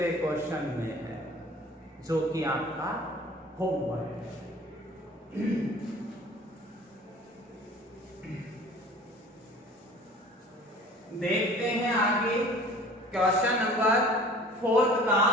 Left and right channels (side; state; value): both; normal; correlation 0.46